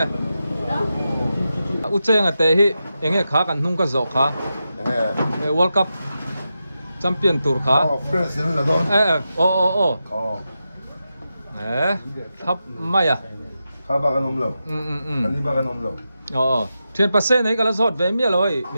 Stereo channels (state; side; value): inverted; both; correlation -0.89